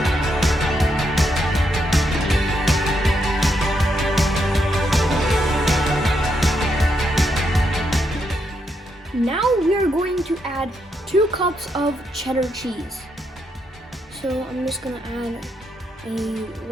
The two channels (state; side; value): normal; both; correlation 0.80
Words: Now we are going to add 2 cups of cheddar cheese. So I'm just going to add a